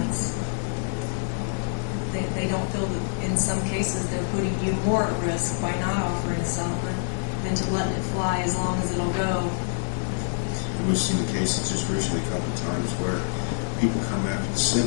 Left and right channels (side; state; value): right; silent; digital silence